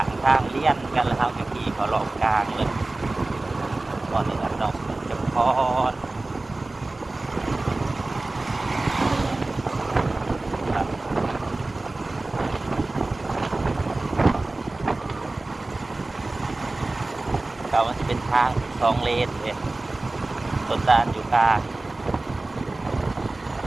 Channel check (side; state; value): left; quieter; 3.0 dB